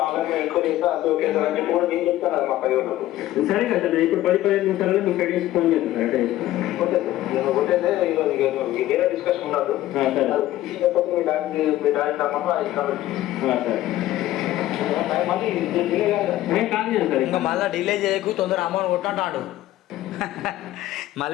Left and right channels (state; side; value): quieter; right; 14.8 dB